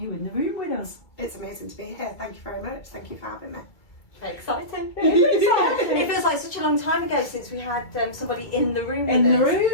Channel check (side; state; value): right; late; 2.3 ms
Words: in the room with us. It's amazing to be here. Thank you very much. Thank you for having me. Very exciting. It feels like such a long time ago since we had somebody in the room In with the us.